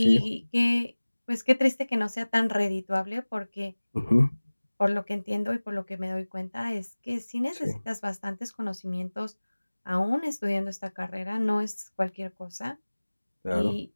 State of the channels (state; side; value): inverted; both; correlation -1.00